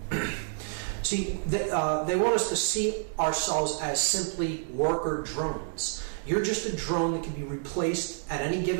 See, they want us to see ourselves as simply worker drones. You're just a drone that can be replaced at any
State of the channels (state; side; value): silent; left; digital silence